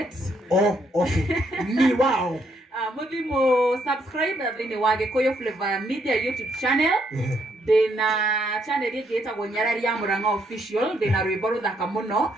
Okay. Ni wao. Mũthimũ subscribe thĩinĩ wa Gĩkũyũ Flavor Media YouTube channel. Ndĩna channel ĩngĩ ĩtagwo Nyarari ya Mũrang'a Official. Ndĩna rwĩmbo rũthaka mũno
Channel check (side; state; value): both; normal; correlation 0.73